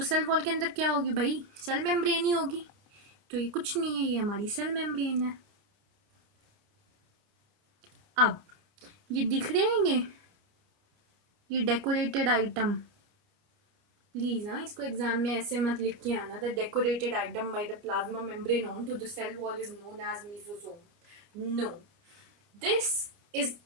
cell wall के अंदर क्या होगी भाई? Cell membrane ही होगी. तो ये कुछ नहीं है, ये हमारी cell membrane है. अब ये दिख रहे हैं ये डेकोरेटेड आइटम. प्लीज इसको एग्जाम में ऐसे मत लिख के आना. The decorated item by the plasma membrane on to the cell wall is known as mesosome. No, this is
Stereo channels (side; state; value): left; late; 29 ms